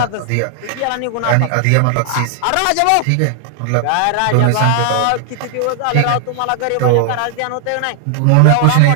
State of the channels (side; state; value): both; different; correlation 0.00